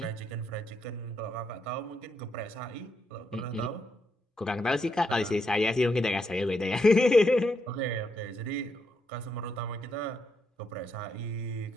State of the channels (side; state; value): both; normal; correlation 0.79